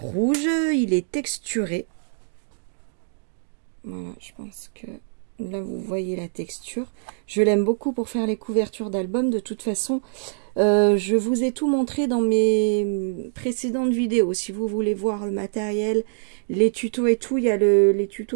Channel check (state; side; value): silent; left; digital silence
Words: rouge, il est texturé. Voilà, je pense que là vous voyez la texture. Je l'aime beaucoup pour faire les couvertures d'albums. De toute façon, je vous ai tout montré dans mes précédentes vidéos. Si vous voulez voir le matériel, les tutos et tout, il y a les